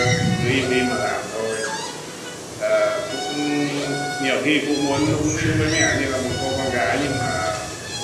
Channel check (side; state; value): both; identical; correlation 1.00